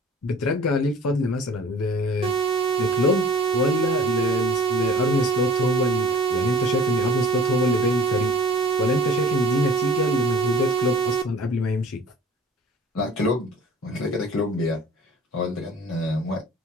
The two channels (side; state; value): both; normal; correlation 0.46